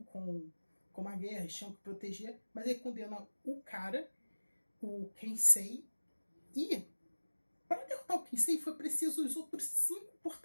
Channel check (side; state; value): both; inverted; correlation -1.00